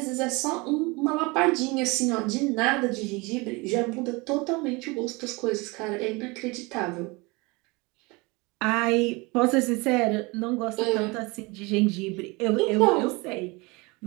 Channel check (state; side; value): quieter; left; 26.0 dB